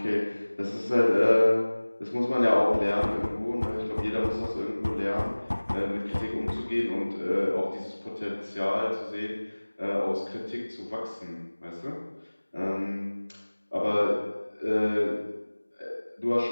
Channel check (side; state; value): both; inverted; correlation -1.00